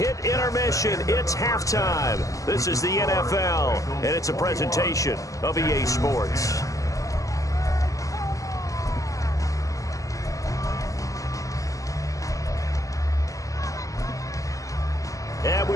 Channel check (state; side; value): late; right; 0.16 ms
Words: intermission. It's halftime. This is the NFL, and it's a presentation of EA Sports. And we